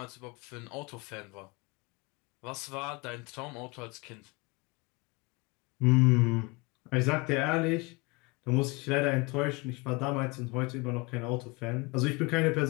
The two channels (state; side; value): quieter; right; 26.2 dB